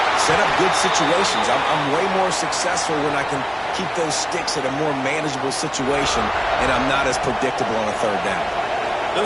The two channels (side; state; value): both; identical; correlation 1.00